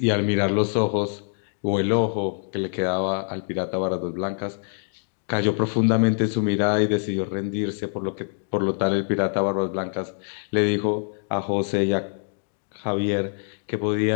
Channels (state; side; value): silent; right; digital silence